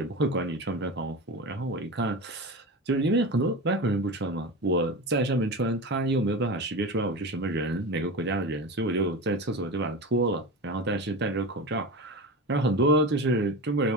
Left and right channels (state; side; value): normal; both; correlation 0.27